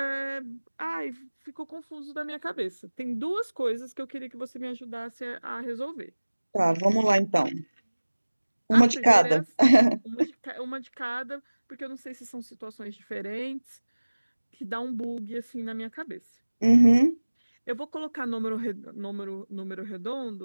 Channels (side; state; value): both; inverted; correlation -1.00